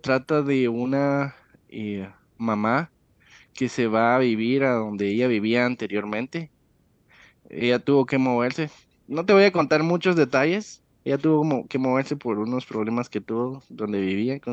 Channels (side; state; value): both; identical; correlation 1.00